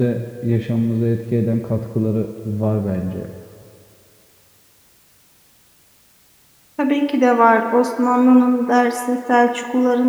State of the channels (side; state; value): both; identical; correlation 1.00